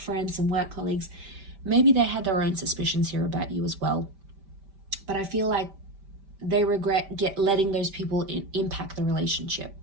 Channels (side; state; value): left; late; 5.1 ms